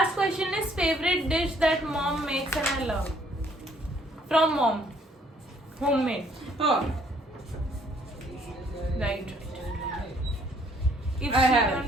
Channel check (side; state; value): both; normal; correlation 0.63